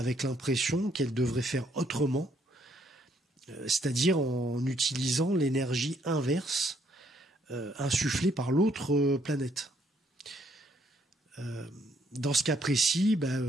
l'impression qu'elle devrait faire autrement, c'est-à-dire en utilisant l'énergie inverse insufflée par l'autre planète. Dans ce cas précis,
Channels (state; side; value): normal; both; correlation 0.70